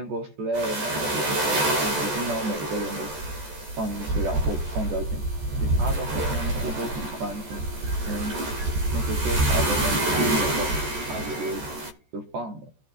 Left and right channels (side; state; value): left; late; 14 ms